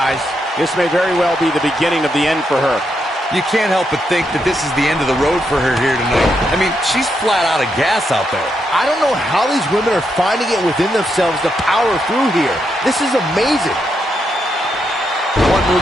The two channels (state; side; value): normal; both; correlation 0.81